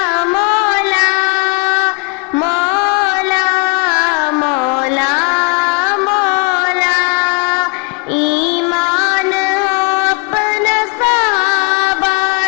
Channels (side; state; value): right; quieter; 35.0 dB